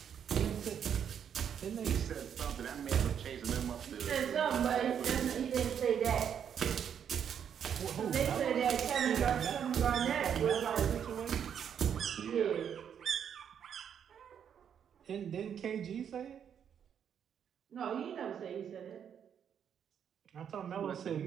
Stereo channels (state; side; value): quieter; left; 8.3 dB